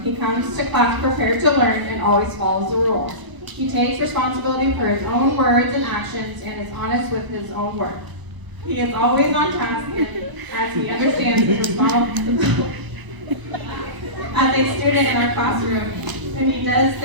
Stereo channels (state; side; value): late; left; 1.0 ms